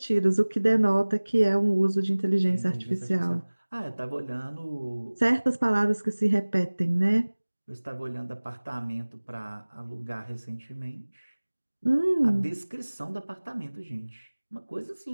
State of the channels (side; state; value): both; inverted; correlation -1.00